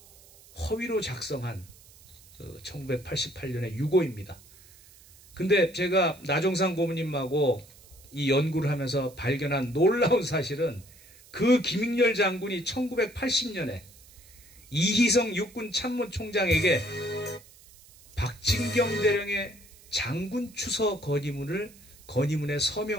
허위로 작성한 1988년의 유고입니다. 근데 제가 나종삼 고문님하고 이 연구를 하면서 발견한 놀라운 사실은 그 김익렬 장군이 1980년에 이희성 육군 참모총장에게 박진경 대령의 장군 추서 건의문에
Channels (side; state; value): right; noise; hiss, 24 dB below the sound